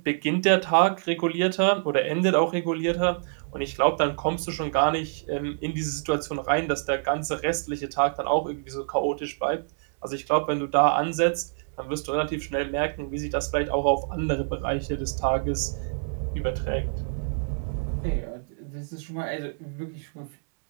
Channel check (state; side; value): silent; left; digital silence